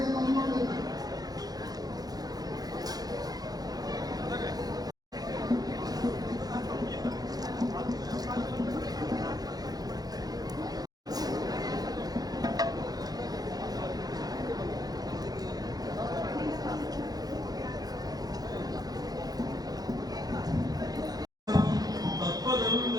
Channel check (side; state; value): left; late; 0.19 ms